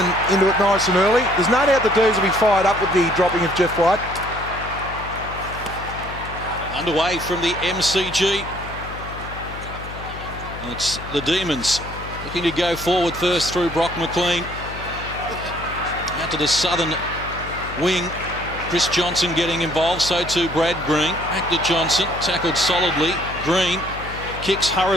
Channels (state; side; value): noise; left; hum, 11 dB below the sound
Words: into it nice and early. There's no doubt the D's will be fired up with the dropping of Jeff White. Underway from the MCG. It's the Demons looking to go forward first through Brock McLean. Out to the southern wing. Chris Johnson getting involved, so too Brad Green. Back to Johnson, tackled solidly. Green kicks